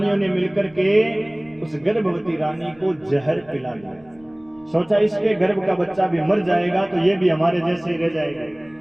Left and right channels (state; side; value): noise; left; rumble, 28 dB below the sound